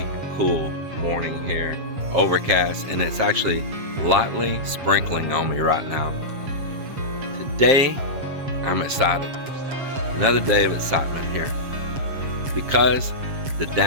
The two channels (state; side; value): late; left; 7.5 ms